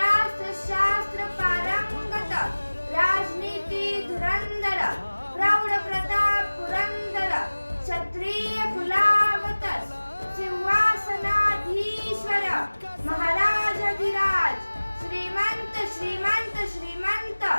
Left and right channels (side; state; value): both; inverted; correlation -1.00